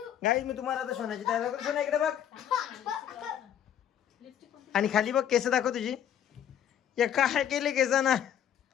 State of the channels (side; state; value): right; quieter; 9.7 dB